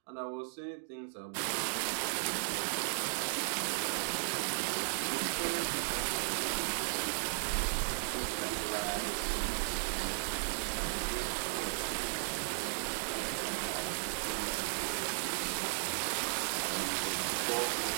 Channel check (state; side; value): silent; left; digital silence